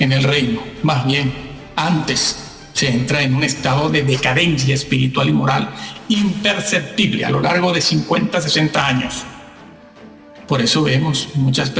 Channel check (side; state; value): both; identical; correlation 1.00